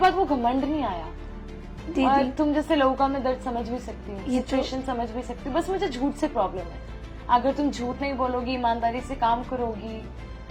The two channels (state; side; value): identical; both; correlation 1.00